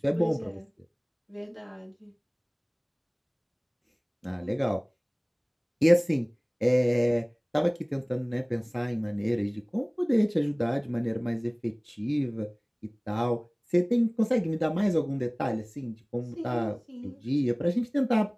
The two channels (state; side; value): identical; both; correlation 1.00